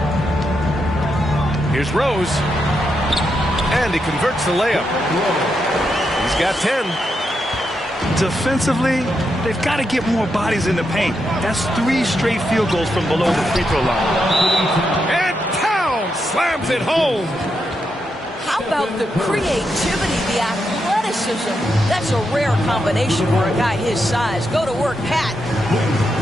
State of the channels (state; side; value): normal; both; correlation 0.83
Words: Here's Rose. And he converts the layup. He's got 10. Defensively, they've got to get more bodies in the paint. That's 3 straight field goals from below the free throw line. And Towns slams it home. How about the creativity, the athleticism? That's a rare combination for a guy his size. Go to work, Pat.